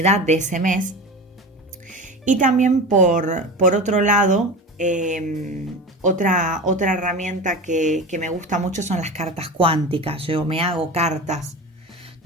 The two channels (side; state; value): both; normal; correlation 0.29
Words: de ese mes. Y también por otro lado, otra herramienta que me gusta mucho son las cartas cuánticas. Yo me hago cartas